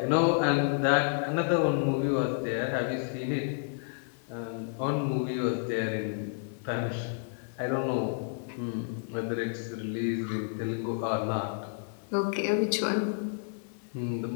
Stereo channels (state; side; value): silent; right; 57 dB below the other